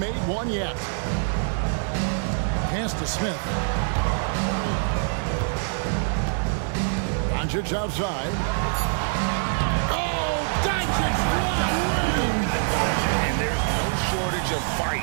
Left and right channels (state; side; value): silent; left; 62 dB below the other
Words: one yet. Pass to Smith. Doncic outside. Oh, Doncic long range. And there's no shortage of